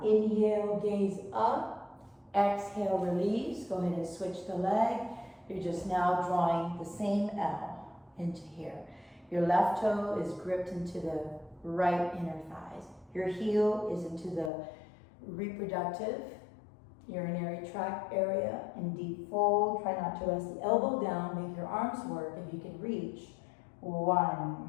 inhale, gaze up. Exhale, release. Go ahead and switch the leg. You're just now drawing the same L into here. Your left toe is gripped into the right inner thighs. Your heel is into the reproductive urinary tract area in deep fold. Try not to rest the elbow down. Make your arms work if you can reach.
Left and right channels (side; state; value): right; drops out; at 14.5 s